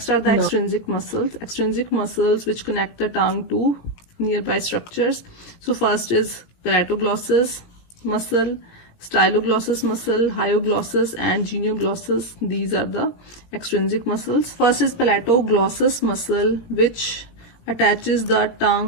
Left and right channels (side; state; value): right; late; 17 ms